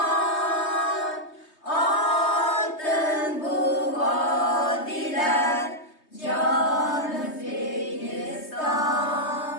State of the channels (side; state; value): right; late; 3.2 ms